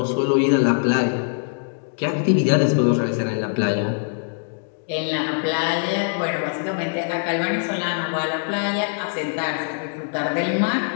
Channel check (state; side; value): silent; right; digital silence